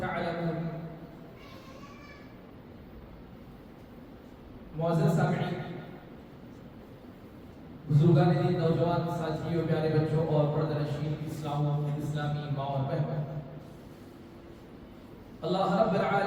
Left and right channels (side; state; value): both; identical; correlation 1.00